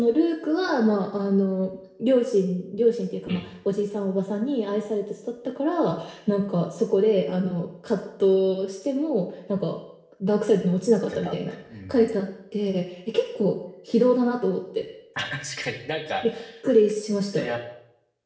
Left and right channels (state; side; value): identical; both; correlation 1.00